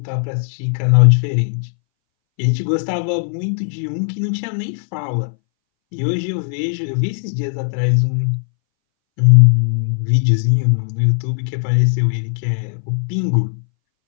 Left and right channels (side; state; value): right; silent; 64 dB below the other